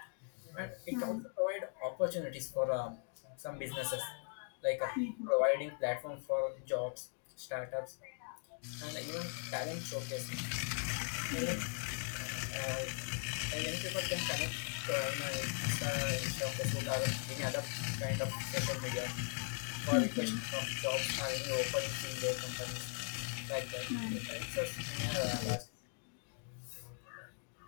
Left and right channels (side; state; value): right; silent; 51 dB below the other